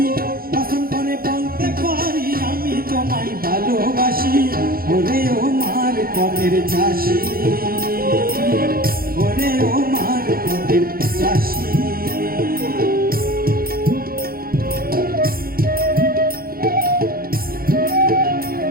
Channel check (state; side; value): late; left; 0.43 ms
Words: কসম করে বলতে পারি আমি তোমায় ভালোবাসি। ওরে ও মার পথের চাষি, ওরে ও মার পথের চাষি।